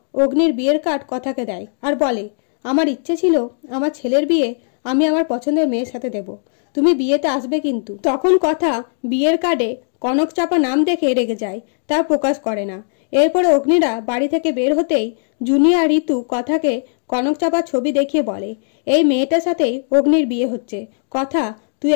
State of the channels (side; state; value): right; silent; digital silence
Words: অগ্নির বিয়ের কার্ড কথাকে দেয় আর বলে, আমার ইচ্ছে ছিল আমার ছেলের বিয়ে আমি আমার পছন্দের মেয়ের সাথে দেব, তুমি বিয়েতে আসবে কিন্তু। তখন কথা বিয়ের কার্ডে কনক চাপা নাম দেখে রেগে যায়, তা প্রকাশ করে না। এরপরে অগ্নিরা বাড়ি থেকে বের হতেই জুনিয়া ঋতু কথাকে কনক চাপার ছবি দেখিয়ে বলে, এই মেয়েটার সাথেই অগ্নির বিয়ে হচ্ছে, কথা তুই